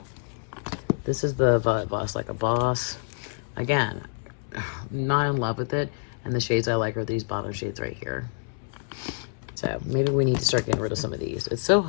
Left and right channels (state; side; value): silent; right; 60 dB below the other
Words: This is the Violet Voss Like a Boss. Again, not in love with it. And the shades I like are these bottom shades right here. So maybe we need to start getting rid of some of these. It's so